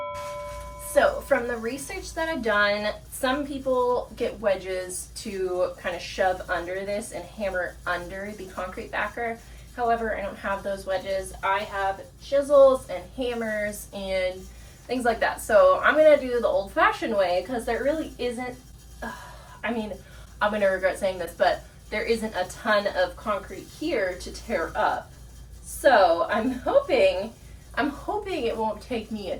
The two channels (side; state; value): both; identical; correlation 1.00